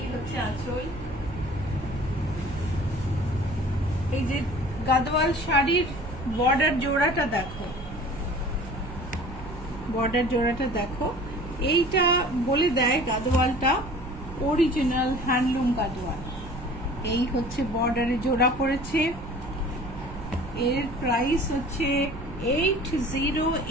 হচ্ছে আঁচল। এই যে গাদওয়াল শাড়ির বর্ডার জোড়াটা দেখো, বর্ডার জোড়াটা দেখো, এইটা বলে দেয় গাদওয়ালটা অরিজিনাল হ্যান্ডলুম গাদওয়াল। এই হচ্ছে বর্ডারে জোড়া পড়েছে। এর প্রাইস হচ্ছে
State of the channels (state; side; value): noise; right; rumble, 12 dB below the sound